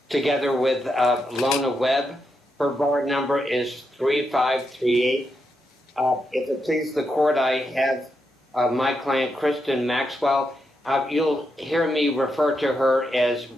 together with Lona Webb. Her bar number is 3538. If it pleases the court, I have my client, Kristen Maxwell. You'll hear me refer to her as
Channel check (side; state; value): both; normal; correlation 0.84